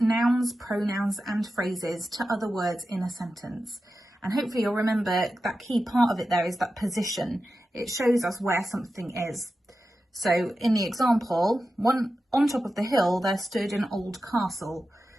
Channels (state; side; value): normal; both; correlation 0.92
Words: pronouns and phrases to other words in a sentence. And hopefully you'll remember that key part of it there is that position. It shows us where something is. So in the example, on top of the hill there stood an old castle.